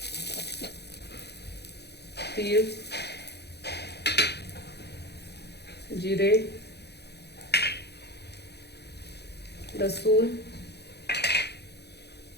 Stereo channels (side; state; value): right; late; 0.48 ms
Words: तीळ, जिरे, लसूण,